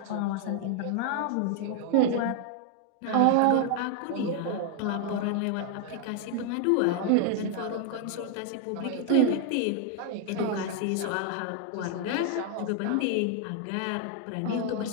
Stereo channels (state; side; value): different; both; correlation 0.00